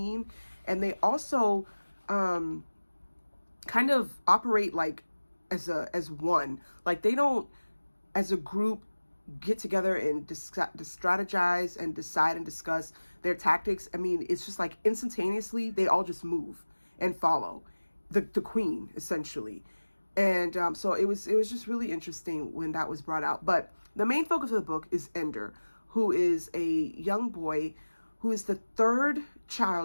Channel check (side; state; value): both; inverted; correlation -1.00